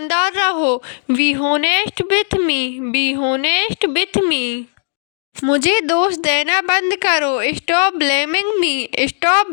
रहो। Be honest with me. B honest with me. मुझे दोष देना बंद करो। Stop blaming me. Stop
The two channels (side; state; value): right; silent; digital silence